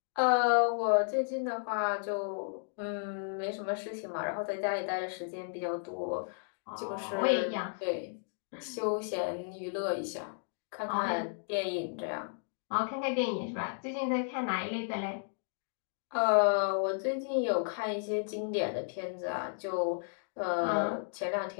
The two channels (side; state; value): right; silent; digital silence